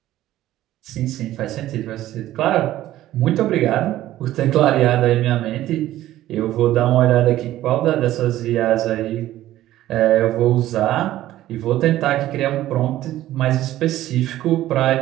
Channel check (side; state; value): left; quieter; 14.3 dB